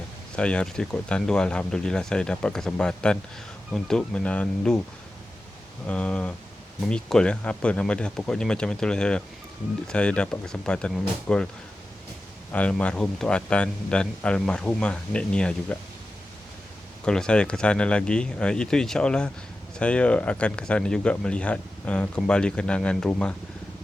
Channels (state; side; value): normal; both; correlation 0.93